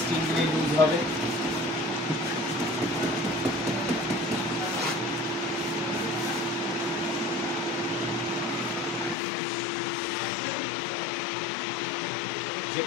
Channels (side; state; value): right; drops out; at 9.2 s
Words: স্টিফ দিলে লুজ হবে।